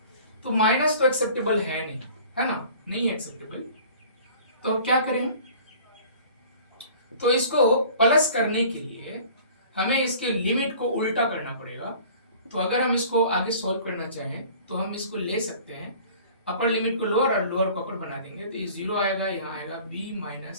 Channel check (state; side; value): inverted; both; correlation -0.47